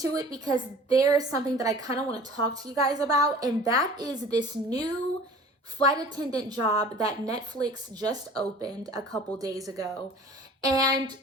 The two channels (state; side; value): normal; both; correlation 0.45